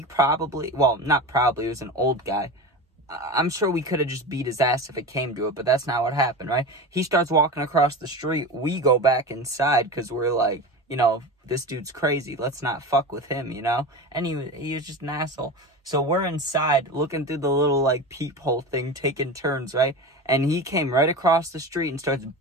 probably, it was an old guy. I'm sure we could have just beat his ass if it came to it, but that's not what happened, right? He starts walking across the street. We go back inside because we're like, you know, this dude's crazy. Let's not fuck with him, you know? And he was just an asshole. So we're inside looking through the little, like, peephole thing, taking turns, right? And he came right across the street and starts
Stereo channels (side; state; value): both; normal; correlation 0.28